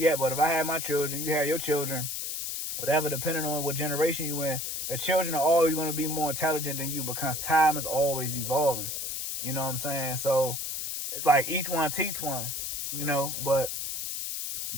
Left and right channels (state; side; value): noise; left; hiss, 4 dB below the sound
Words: yet, but if I had my children, you have your children, whatever, depending on what generation you in, the children are always going to be more intelligent than you because time is always evolving. You know what I'm saying? So it's like each one teach one, you know, but